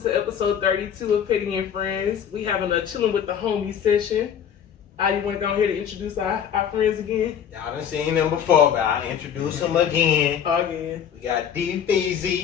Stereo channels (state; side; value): quieter; right; 8.4 dB